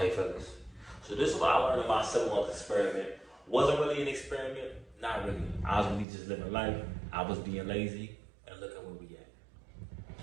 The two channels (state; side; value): drops out; left; at 6.1 s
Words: fellas? So this is what I learned in my 7-month experiment. Wasn't really an experiment. Not really. I was really just living life. I was being lazy. And look at where we at.